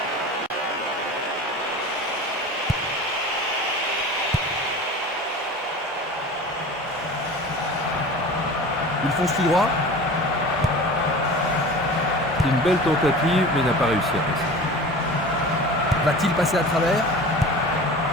Il fonce tout droit. C'est une belle tentative, mais n'a pas réussi à passer. Va-t-il passer à travers?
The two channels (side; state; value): both; normal; correlation 0.37